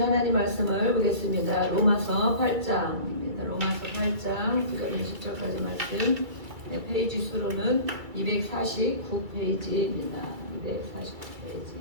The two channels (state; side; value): late; left; 2.3 ms